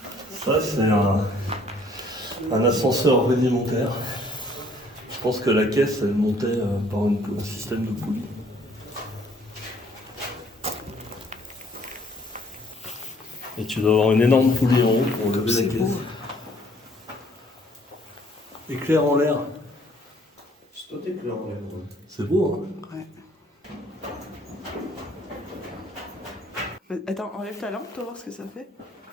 Ça c'est un ascenseur rudimentaire. Je pense que la caisse elle montait par un système de poulie. Et tu dois avoir une énorme poulie en haut pour lever la C'est caisse. beau. Éclair en l'air. C'est toi éclair en l'air. C'est beau hein. Ouais. Attends, enlève ta lampe, pour voir ce que ça fait.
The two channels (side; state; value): both; normal; correlation 0.61